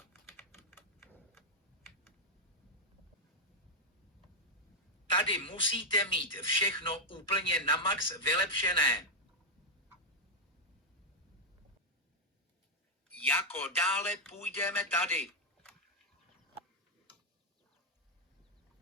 Tady musíte mít všechno úplně na max vylepšené. Jako dále půjdeme tady.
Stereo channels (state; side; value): normal; both; correlation -0.01